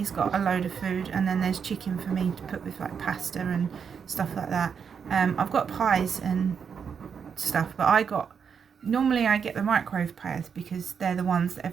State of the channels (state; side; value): quieter; left; 6.7 dB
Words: got a load of food, and then there's chicken for me to put with like pasta and stuff like that. I've got pies and stuff, but normally I get the microwave pies because they're the ones that